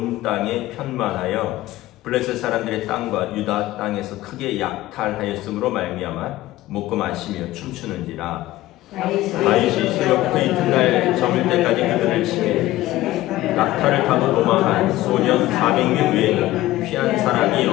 땅에 편만하여 블레셋 사람들의 땅과 유다 땅에서 크게 약탈하였으므로 말미암아 먹고 마시며 춤추는지라. 다윗이 새벽부터 이튿날 저물 때까지 그들을 치매 낙타를 타고 도망한 소년 400명 외에는 피한 사람이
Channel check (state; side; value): quieter; right; 16.4 dB